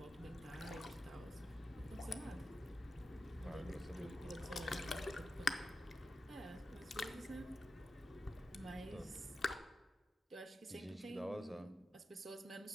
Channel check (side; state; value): both; normal; correlation 0.91